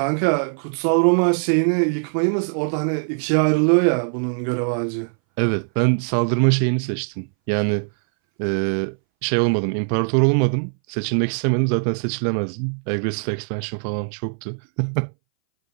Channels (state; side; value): silent; left; 62 dB below the other